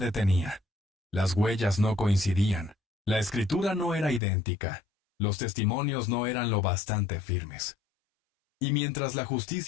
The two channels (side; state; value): right; drops out; at 4.2 s